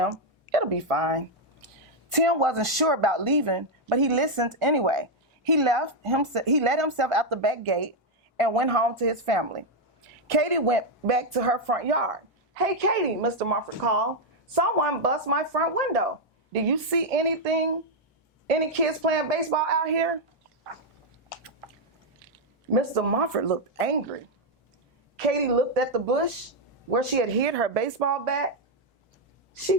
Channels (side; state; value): both; normal; correlation 0.00